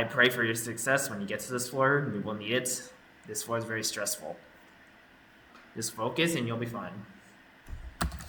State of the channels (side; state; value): both; identical; correlation 1.00